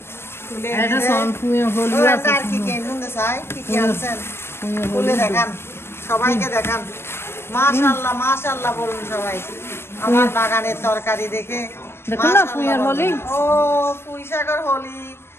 তুলে এটা সম্পূর্ণ হলো আছে আর কি কি নুন চাই কি কি আনছেন তুলে দেখান, সবাইকে দেখান। মাশাআল্লাহ মাশাআল্লাহ বলুন সবাই আমার বাগানের তরকারি দেখে। দেখুন না পুঁইয়ের হলি। ও পুঁই শাকের হলি,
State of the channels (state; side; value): late; right; 0.12 ms